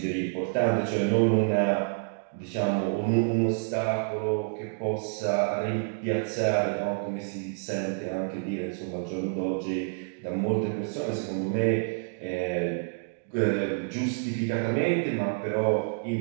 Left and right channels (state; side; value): silent; left; digital silence